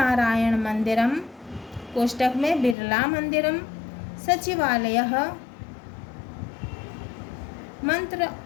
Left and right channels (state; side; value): drops out; right; at 2.8 s